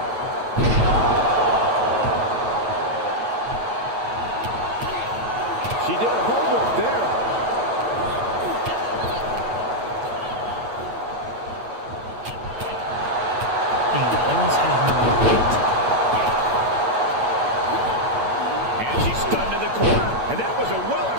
She did her homework there. Damn, I almost had her beat. And she's stunned in the corner. And that was a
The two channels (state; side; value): late; left; 8.8 ms